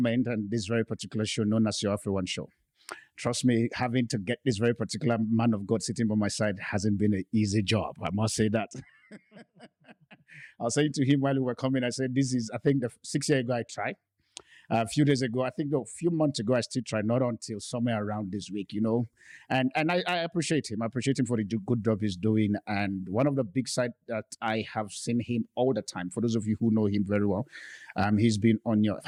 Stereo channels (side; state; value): both; identical; correlation 1.00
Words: and this very particular show known as your AfriOne show. Trust me, having to get this very particular man of God sitting by my side hasn't been an easy job. I must say that. I was saying to him while we were coming, I said, this is, I think, the 6 year ago I tried. A few days ago, I think a few months ago, I still tried, not until somewhere around this week, And I appreciate him. I appreciate him for the good job he's doing. And one of the big sides that I have seen him all the time, for those of you who know him very well, he's been on